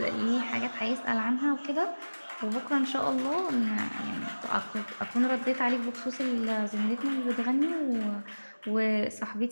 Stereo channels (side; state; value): both; inverted; correlation -1.00